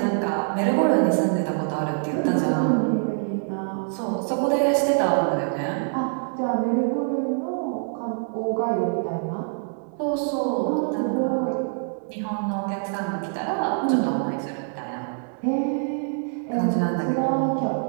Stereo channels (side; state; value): left; silent; 62 dB below the other